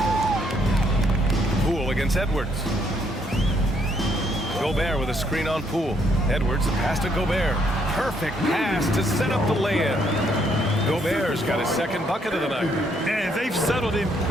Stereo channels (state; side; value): normal; both; correlation 0.71